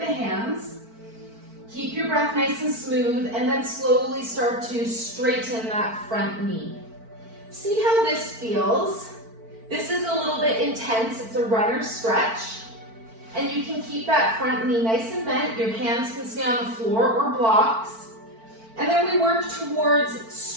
hands. Keep your breath nice and smooth, and then slowly start to straighten that front knee. See how this feels? This is a little bit intense. It's a runner stretch. And you can keep that front knee nice and bent. Your hands can stay on the floor or blocks. And then we work towards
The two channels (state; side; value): late; left; 4.5 ms